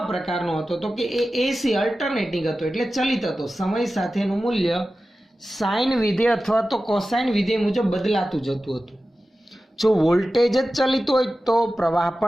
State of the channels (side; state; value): both; normal; correlation 0.94